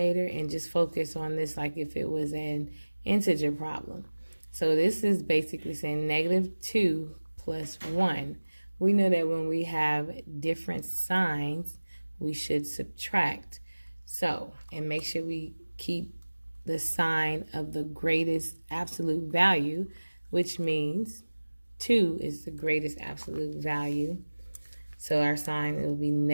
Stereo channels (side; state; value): both; inverted; correlation -1.00